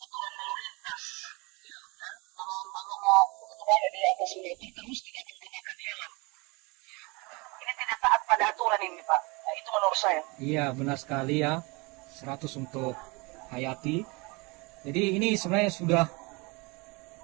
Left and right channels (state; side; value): quieter; left; 27.1 dB